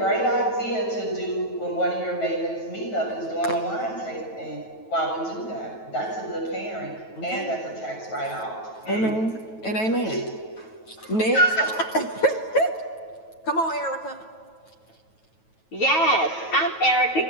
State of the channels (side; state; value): right; late; 9.2 ms